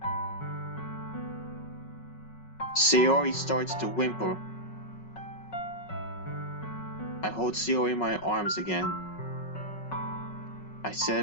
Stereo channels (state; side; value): late; right; 5.4 ms